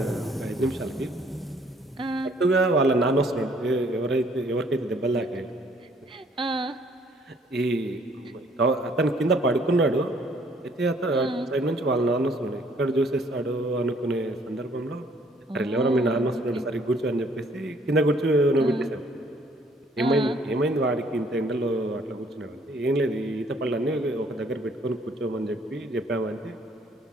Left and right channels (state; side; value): normal; both; correlation 0.62